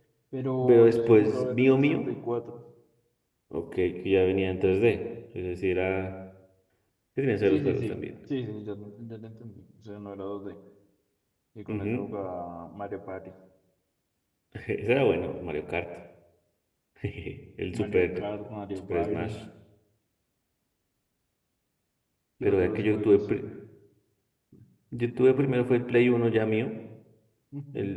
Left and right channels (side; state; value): both; identical; correlation 1.00